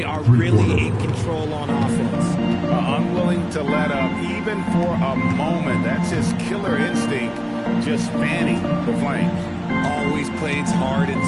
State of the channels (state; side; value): identical; both; correlation 1.00